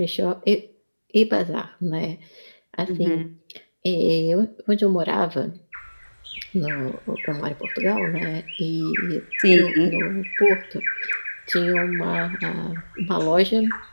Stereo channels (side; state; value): both; inverted; correlation -1.00